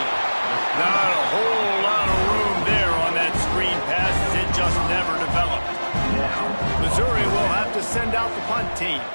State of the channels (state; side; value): inverted; both; correlation -1.00